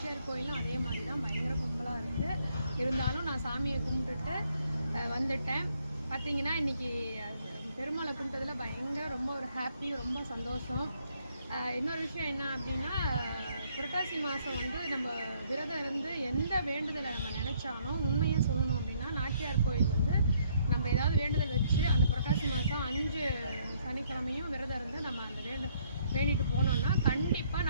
கோயிலும் அதே மாதிரி தான் பயங்கர கும்பலாக இருக்குது. இருந்தாலும் நான் சாமியை கும்பிட்டுட்டு வந்துட்டேன். பார்த்தீங்கன்னா இன்றைக்கி பெருமாளை கும்பிட்டதில் பயங்கர ரொம்ப ஒரு ஹாப்பி, ரொம்ப சந்தோஷம். இன்னொரு விஷயம் என்ன அப்படின்னா, புரட்டாசி மாதம் வந்து நம்ம விரதம் இருந்து எந்த வேண்டுதலை நம்ம நினச்சாலும் உண்மையாக சொல்லணும் அப்படின்னா நாச்சியார் கோயில் வந்து நம்ம ஏதாவது வேண்டுதல் வச்சு அந்த புரட்டாசி மாதம் 5 சனிக்கிழமையும் விரதம் இருந்து நம்ம அந்த வேண்டிட்டு போனோம்னா கண்டிப்பாக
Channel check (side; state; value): both; inverted; correlation -0.68